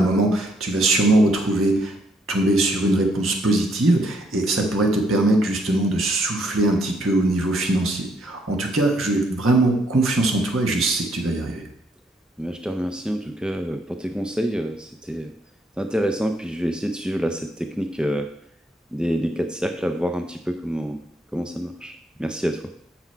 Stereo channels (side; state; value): both; normal; correlation 0.71